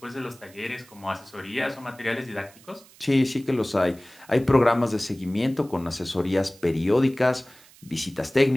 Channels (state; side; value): noise; right; hiss, 25 dB below the sound